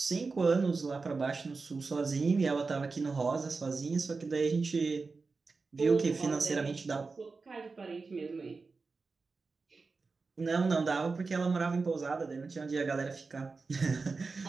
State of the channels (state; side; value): quieter; left; 4.2 dB